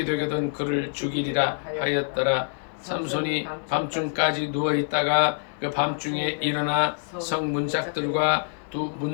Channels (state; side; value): silent; right; 61 dB below the other